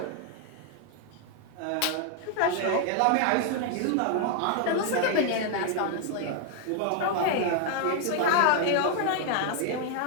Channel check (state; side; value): different; both; correlation 0.00